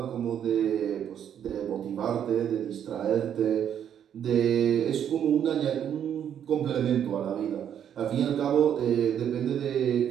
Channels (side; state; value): left; quieter; 9.2 dB